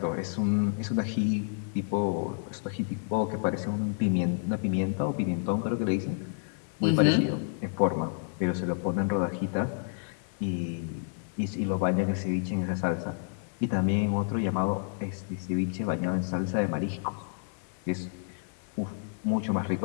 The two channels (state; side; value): silent; right; 58 dB below the other